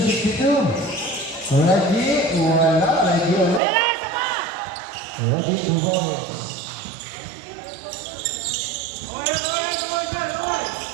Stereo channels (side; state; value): left; drops out; at 3.6 s